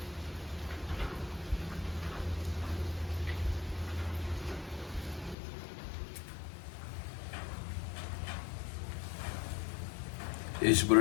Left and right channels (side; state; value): right; drops out; at 5.4 s